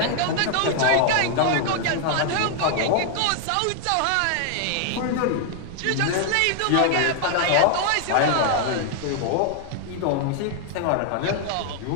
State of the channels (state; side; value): different; both; correlation 0.00